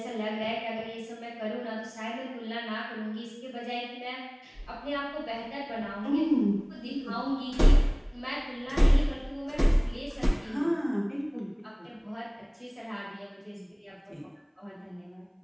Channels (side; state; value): both; identical; correlation 1.00